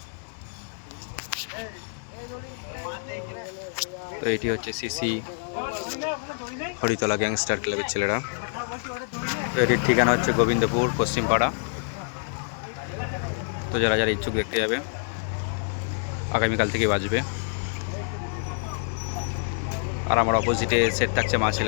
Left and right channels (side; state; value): right; silent; digital silence